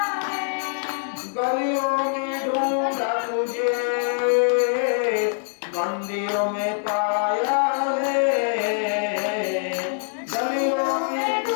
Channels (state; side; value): silent; right; digital silence